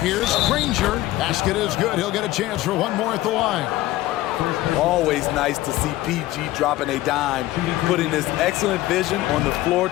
Granger. Basket is good. He'll get a chance for one more at the line. Always nice to see PG dropping a dime, putting his excellent vision on the floor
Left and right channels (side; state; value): right; quieter; 16.5 dB